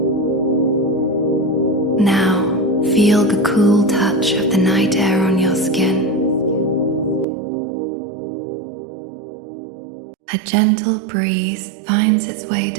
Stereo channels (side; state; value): left; drops out; at 7.2 s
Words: Now, feel the cool touch of the night air on your skin. A gentle breeze finds its way